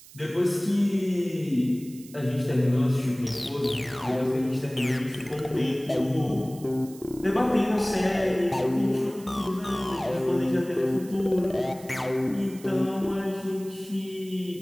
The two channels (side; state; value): right; noise; hiss, 20 dB below the sound